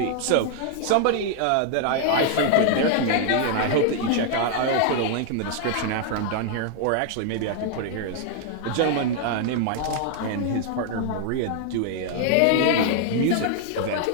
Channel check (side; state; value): both; different; correlation 0.00